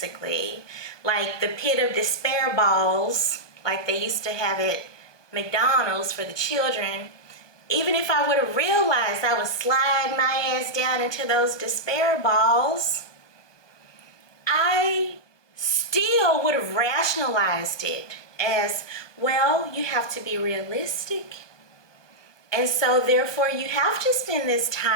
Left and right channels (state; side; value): late; right; 1.2 ms